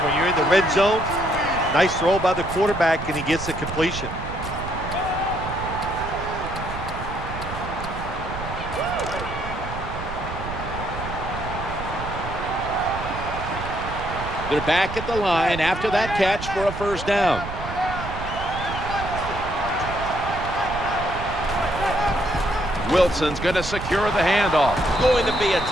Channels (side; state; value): right; noise; rumble, 8 dB below the sound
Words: you're in the red zone. Nice throw by the quarterback, and he gets the completion. They're back at the line after that catch for a first down. Wilson's going to secure the handoff. Going to be a